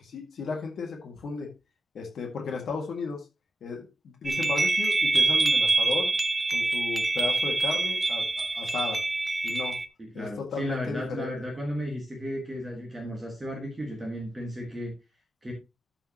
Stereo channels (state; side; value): normal; both; correlation 0.91